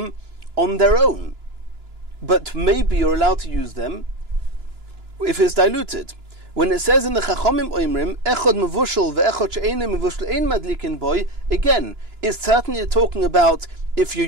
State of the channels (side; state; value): left; late; 2.9 ms